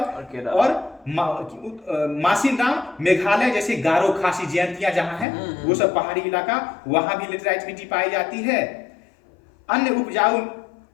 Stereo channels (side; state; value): right; drops out; at 5.2 s